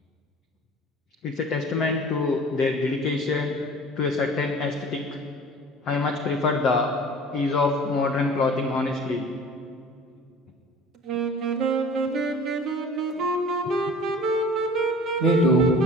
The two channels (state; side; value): normal; both; correlation 0.44